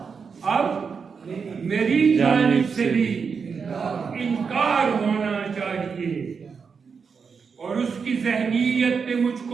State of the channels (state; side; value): quieter; left; 5.7 dB